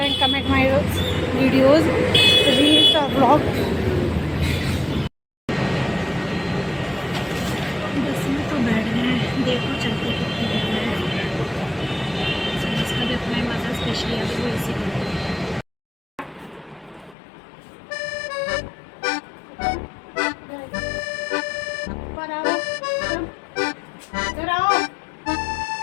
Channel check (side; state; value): right; drops out; at 17.2 s